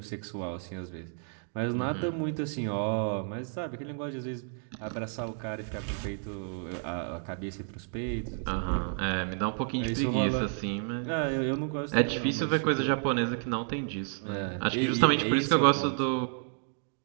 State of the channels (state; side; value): silent; left; 57 dB below the other